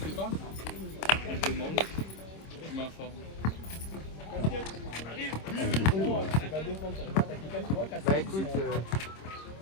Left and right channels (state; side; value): late; right; 26 ms